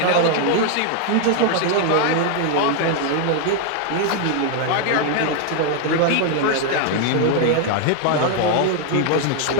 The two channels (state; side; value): different; both; correlation 0.00